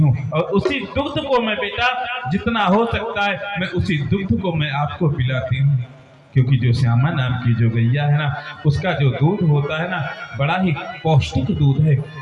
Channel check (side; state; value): both; identical; correlation 1.00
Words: और उसी दुग्ध को मैं बेटा जितना हो सकता है मैं उसी दुग्ध को मैं आपको पिलाती हूँ। क्योंकि जो श्यामा नाम की जो गैया है ना, उसका जो दूध होता है ना, बड़ा ही पौष्टिक दूध है,